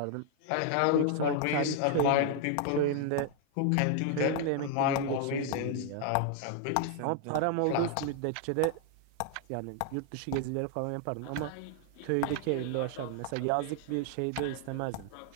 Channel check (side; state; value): both; different; correlation 0.00